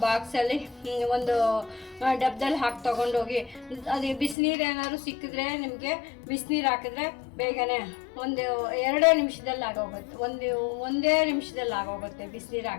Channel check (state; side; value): drops out; right; at 4.4 s